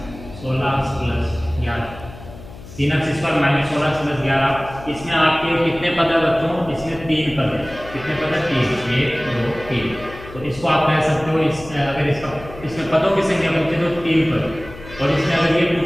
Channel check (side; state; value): left; noise; hum, 16 dB below the sound